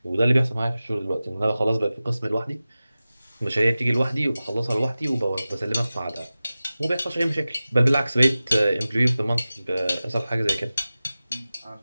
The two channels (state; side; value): inverted; both; correlation -0.96